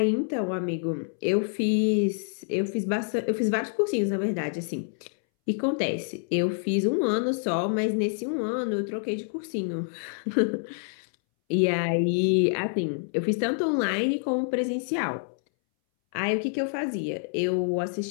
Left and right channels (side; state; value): right; silent; 60 dB below the other